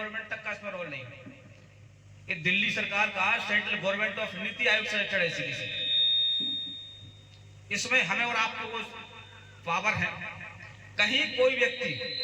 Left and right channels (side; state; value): both; identical; correlation 1.00